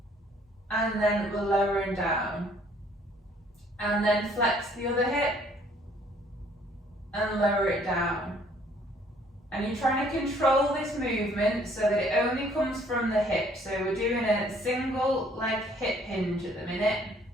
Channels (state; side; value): normal; both; correlation 0.61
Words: and then we're lowering down. And then flex the other hip and lower it down. And you're trying to control this movement so that it only comes from the hip. So we're doing a single leg hip hinge at the minute.